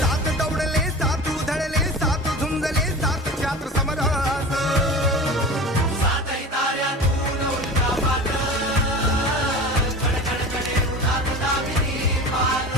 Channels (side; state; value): both; normal; correlation 0.34